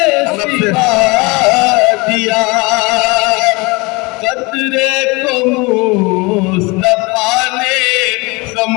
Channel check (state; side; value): quieter; right; 26.1 dB